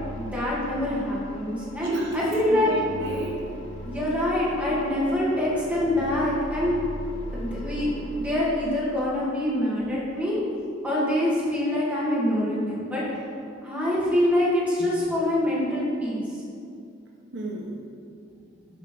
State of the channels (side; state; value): both; normal; correlation 0.56